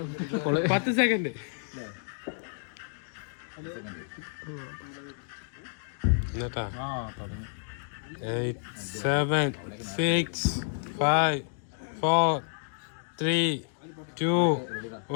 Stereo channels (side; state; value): right; silent; digital silence